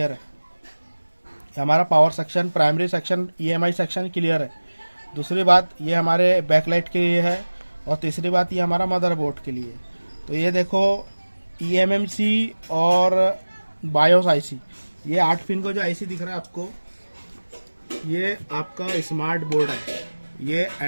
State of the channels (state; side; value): inverted; both; correlation -1.00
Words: है। हमारा power section, primary section, EMI section clear है। दूसरी बात ये हमारे बैकलाइट के लिए है, और तीसरी बात ये हमारा मदरबोर्ड के लिए। तो ये देखो ईएमएमसी और बायोस आईसी, ये 8 पिन को जो आईसी दिख रहा है आपको, ये आपका स्मार्ट बोर्ड है, ये